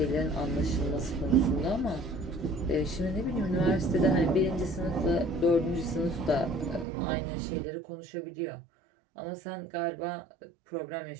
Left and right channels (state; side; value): drops out; left; at 6.9 s